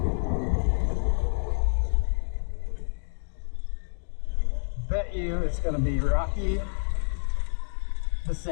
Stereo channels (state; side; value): silent; right; digital silence